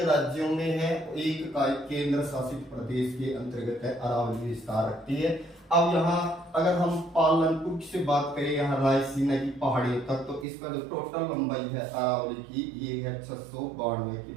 राज्यों में है, एक का केंद्र शासित प्रदेश के अंतर्गत है, अरावली विस्तार रखती है। अब यहाँ अगर हम पालनपुर से बात करें यहाँ रायसीना की पहाड़ियों तक, तो इसका जो टोटल लंबाई है अरावली की ये है 692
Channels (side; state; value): left; drops out; at 10.5 s